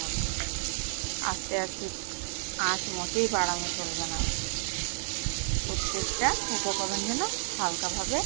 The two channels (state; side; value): silent; left; digital silence